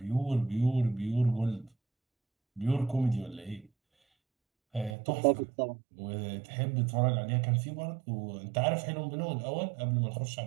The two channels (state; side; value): drops out; left; at 5.0 s